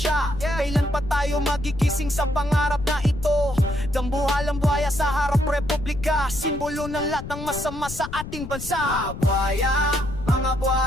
Kailan pa tayo magigising sa pangarap na ito? Dambuhalang buhaya sa harap republika, simbolo ng lahat ng masama sa ating bansa. Mga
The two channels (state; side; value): noise; left; rumble, 10 dB below the sound